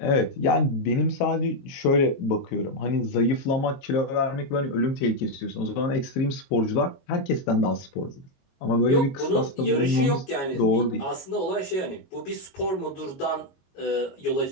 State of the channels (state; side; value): late; right; 22 ms